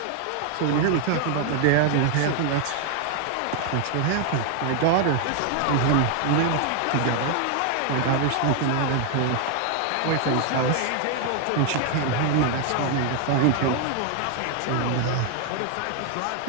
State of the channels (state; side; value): different; both; correlation 0.00